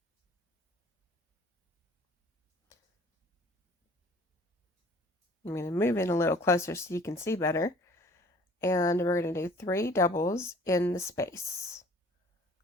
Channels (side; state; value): both; normal; correlation 0.51